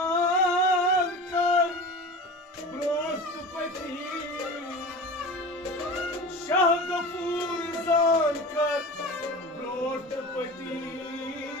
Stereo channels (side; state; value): both; normal; correlation 0.33